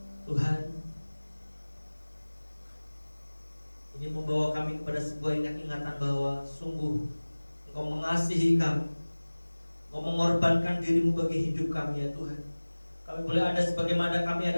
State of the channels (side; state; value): both; inverted; correlation -1.00